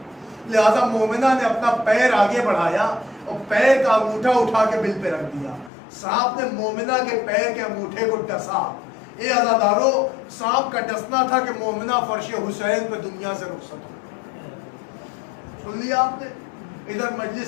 لہذا مومنہ نے اپنا پیر آگے بڑھایا اور پیر کا انگوٹھا اٹھا کے بل پہ رکھ دیا. سانپ نے مومنہ کے پیر کے انگوٹھے کو ڈسا. اے عزادارو، سانپ کا ڈسنا تھا کہ مومنہ فرش حسین پہ دنیا سے رخصت ہو. سن لیا آپ نے؟ ادھر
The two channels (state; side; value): drops out; right; at 5.7 s